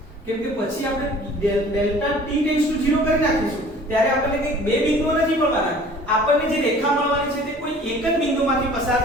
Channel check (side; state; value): both; normal; correlation 0.49